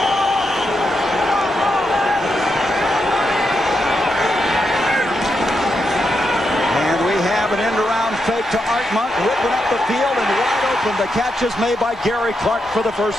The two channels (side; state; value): both; normal; correlation 0.83